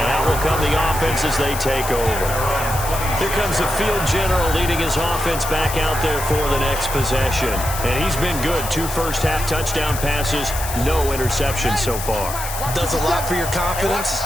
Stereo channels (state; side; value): noise; left; hiss, 8 dB below the sound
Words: out will come the offense as they take over. Here comes the field general leading his offense back out there for the next possession. And he's been good. 2 first-half touchdown passes, no interceptions so far. Does a lot for your confidence.